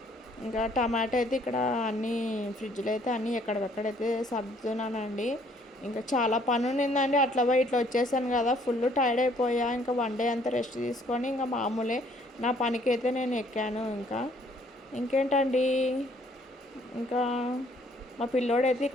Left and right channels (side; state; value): both; normal; correlation 0.62